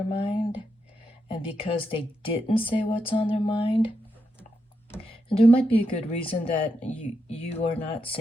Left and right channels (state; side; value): normal; both; correlation 0.84